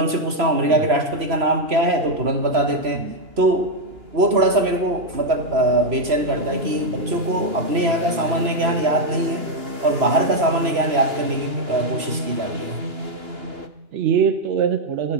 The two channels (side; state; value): left; late; 3.0 ms